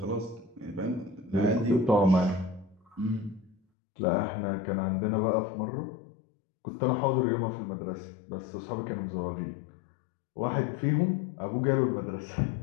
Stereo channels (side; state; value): right; drops out; at 3.6 s